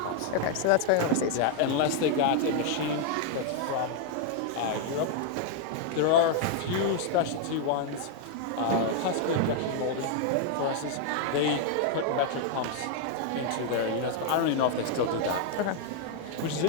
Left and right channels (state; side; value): different; both; correlation 0.00